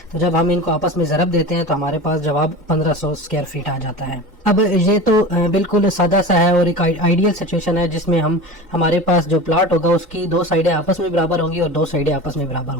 تو جب ہم ان کو آپس میں ضرب دیتے ہیں تو ہمارے پاس جواب 1500 اسکوائر فٹ آ جاتا ہے۔ اب یہ تو بالکل سادہ سا ہے اور ایک آئیڈیل سچویشن ہے جس میں ہمارے پاس جو پلاٹ ہوگا اس کی دو سائڈیں آپس میں برابر ہوں گی اور دو سائڈیں آپس میں برابر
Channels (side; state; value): both; normal; correlation 0.32